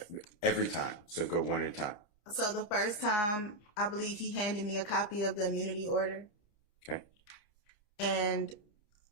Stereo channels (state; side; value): late; right; 29 ms